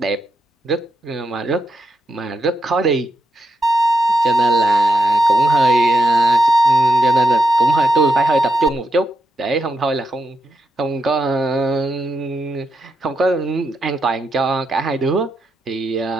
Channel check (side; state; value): both; normal; correlation 0.84